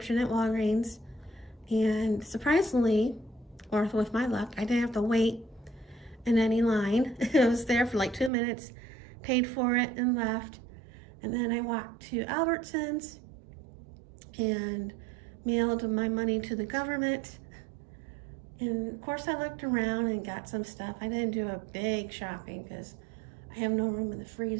at Walgreens, and surprisingly, or with my luck, I didn't have to wait in any line. I was there for like 2 minutes, paid for it, and left. And then I walked to Albertsons and mailed my money to the government. And of course I looked around and got some stuff. I didn't do a big shopping because I have no room in the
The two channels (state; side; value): drops out; left; at 8.3 s